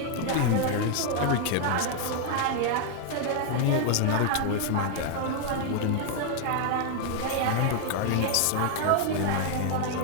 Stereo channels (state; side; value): different; both; correlation 0.00